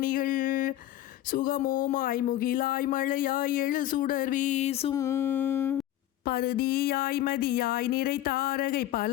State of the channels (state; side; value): quieter; right; 13.5 dB